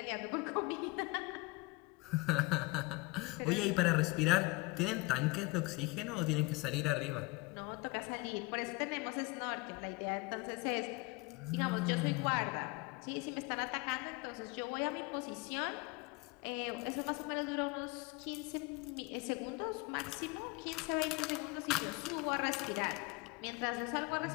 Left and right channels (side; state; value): right; quieter; 25.4 dB